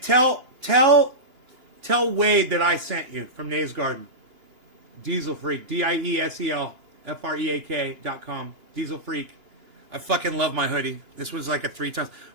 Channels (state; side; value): late; left; 2.9 ms